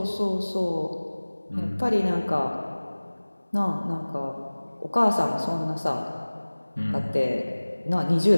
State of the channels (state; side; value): inverted; both; correlation -1.00